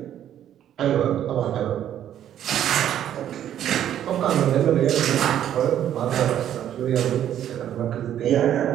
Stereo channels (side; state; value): left; quieter; 10.7 dB